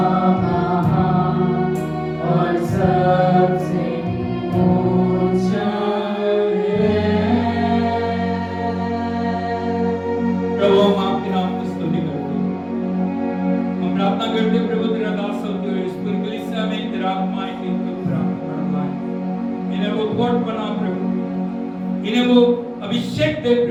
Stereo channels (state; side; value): identical; both; correlation 1.00